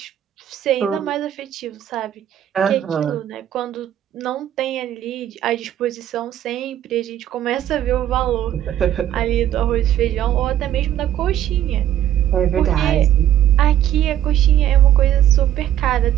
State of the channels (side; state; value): left; quieter; 11.4 dB